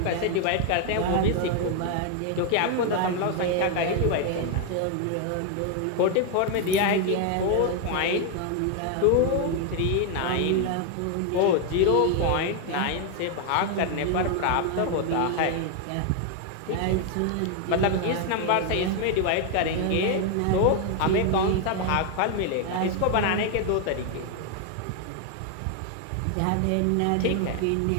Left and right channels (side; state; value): both; different; correlation 0.01